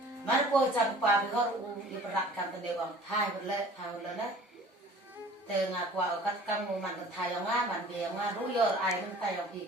mà cô chăm pa bị họ đi bật cam tên đều bằng thay một lần đấy từ ngà qua ở các cam mùa mặn thay ở ngà mặn bìa ngà rú giờ ai mình tay ở bị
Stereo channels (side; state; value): both; normal; correlation 0.48